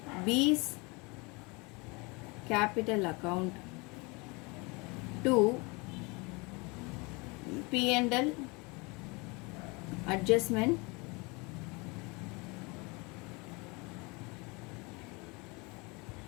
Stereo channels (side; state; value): right; quieter; 27.7 dB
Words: B's capital account to P&L adjustment